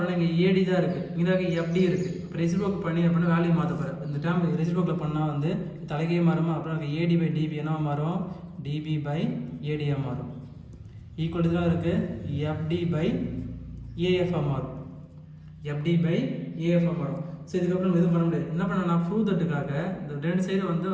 இங்கே ஏடி தான் இருக்குது. இங்கே எஃப்டி இருக்குது. இப்போ ரெசிப்ரோக்கல் பண்ணி அப்படின்னா வேல்யூ மாற்ற போகிறேன். இந்த டைம் ரெசிப்ரோக்கல் பண்ணால் வந்து தலைக்கே மாறுமா. அப்புறம் ஏடி பை டிபி என்னவா மாறும் டிபி பை ஏடியாக மாறும். ஈக்குவல் தான் இருக்குது எஃப்டி பை ஏஎஃப்ஆ மாறும். எஃப்டி பை ஏஎஃப்ஆ மாறும். ஸோ இதுக்கப்புறம் எதுவும் பண்ண முடியாது. என்ன பண்ண நான் ப்ரூவ் தட்டுக்காக இந்த ரெண்டு சைடு வந்து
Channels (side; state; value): both; identical; correlation 1.00